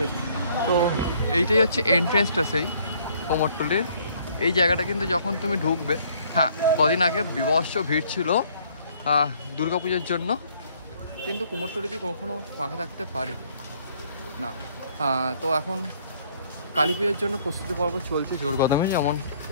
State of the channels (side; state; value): both; inverted; correlation -0.62